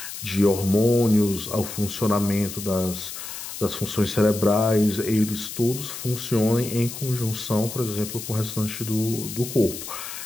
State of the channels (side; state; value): left; noise; hiss, 9 dB below the sound